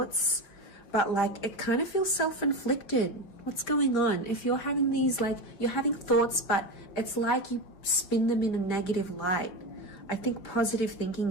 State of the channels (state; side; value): late; right; 5.1 ms